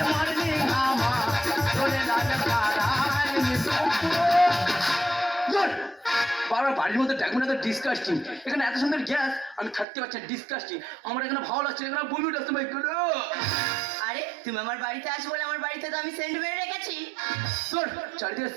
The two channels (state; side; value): drops out; left; at 9.9 s